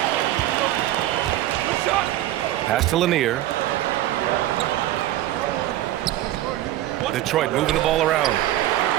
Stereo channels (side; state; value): left; quieter; 14.3 dB